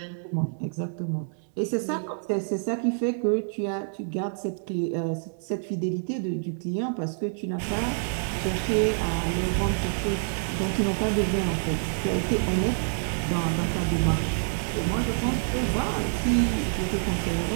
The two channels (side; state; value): left; silent; 60 dB below the other